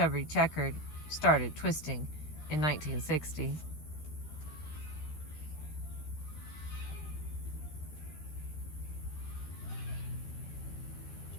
Checker started twisting in 1960.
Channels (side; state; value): right; late; 13 ms